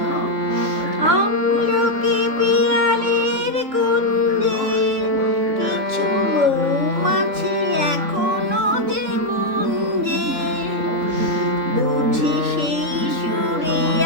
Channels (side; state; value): left; late; 3.7 ms